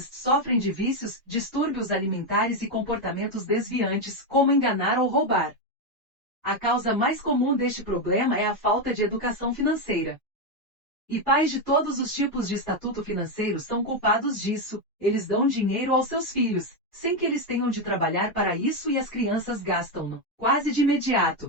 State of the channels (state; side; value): normal; both; correlation 0.07